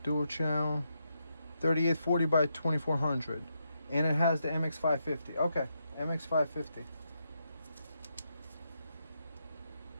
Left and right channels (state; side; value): inverted; both; correlation -0.82